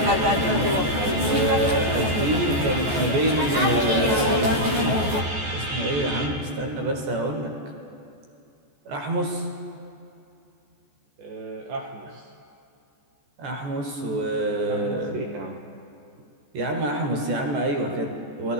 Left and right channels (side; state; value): left; late; 14 ms